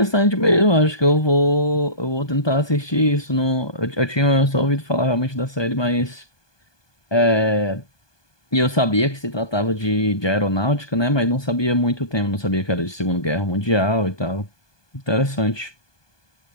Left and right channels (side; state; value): right; late; 1.2 ms